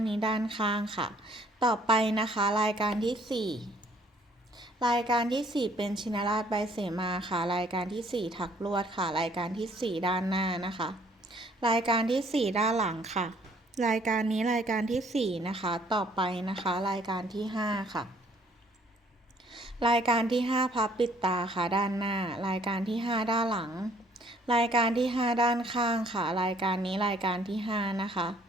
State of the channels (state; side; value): normal; both; correlation 0.61